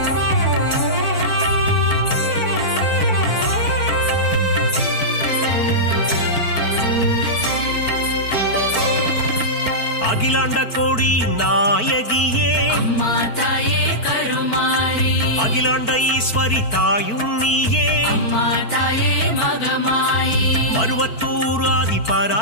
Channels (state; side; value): late; right; 4.5 ms